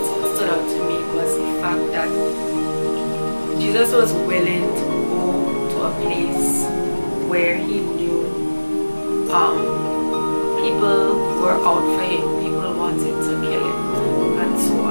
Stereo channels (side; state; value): both; inverted; correlation -1.00